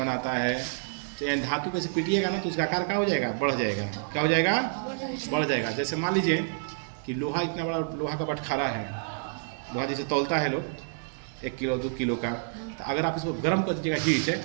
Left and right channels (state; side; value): silent; left; digital silence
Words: है। चाहे धातु पे से पीटिएगा ना तो उसका आकार क्या हो जाएगा? बढ़ जाएगा। क्या हो जाएगा? बढ़ जाएगा। जैसे मान लीजिए कि लोहा, इतना बड़ा लोहा का बटखारा है, लोहा जैसे तौलता है लोग 1 किलो 2 किलो का, तो अगर आप इसको गर्म कर दीजिएगा हीट है,